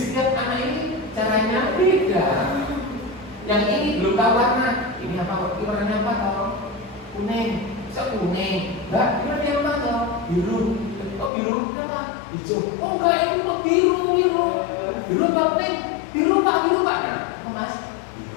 anak ini caranya beda. Yang ini belum tahu warna. Ini apa? Ini warnanya apa? Tahu? Kuning. Bisa kuning. Mbak, ini warnanya apa? Tahu? Biru. Oh biru apa? Hijau. Oh enggak, itu kok biru. Biru apa pink? Biru pak. Nah, mas?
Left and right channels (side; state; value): right; drops out; at 11.3 s